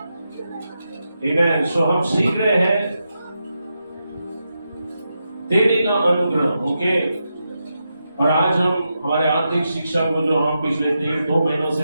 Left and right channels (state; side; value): inverted; both; correlation -0.87